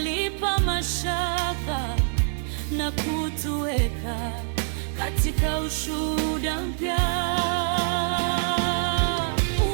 mashaka na kutuweka katika ushuhuda mpya.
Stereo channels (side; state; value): left; silent; 62 dB below the other